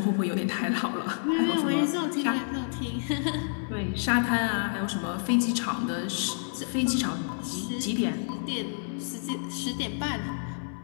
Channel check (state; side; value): silent; right; 56 dB below the other